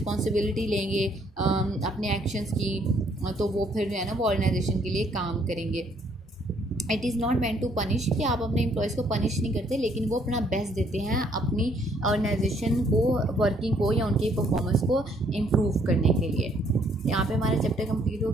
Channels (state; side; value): normal; both; correlation 0.66